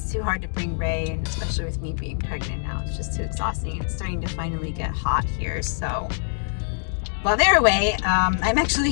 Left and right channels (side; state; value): right; silent; digital silence